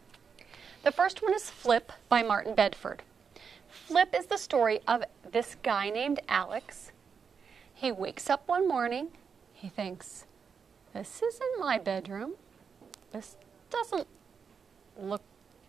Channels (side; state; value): left; quieter; 6.2 dB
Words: The first one is Flip by Martin Bedford. Flip is the story of this guy named Alex. He wakes up one morning, he thinks, this isn't my bedroom. This doesn't look